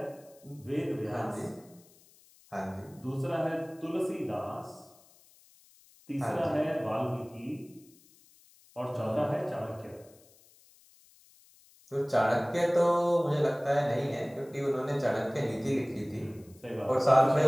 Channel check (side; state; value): left; noise; hiss, 28 dB below the sound